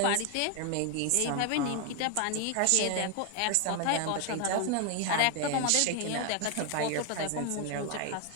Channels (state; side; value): different; both; correlation 0.01